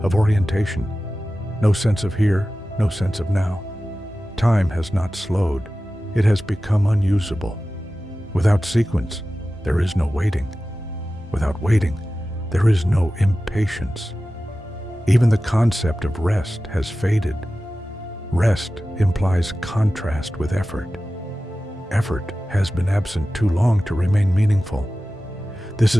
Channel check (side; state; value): both; normal; correlation 0.95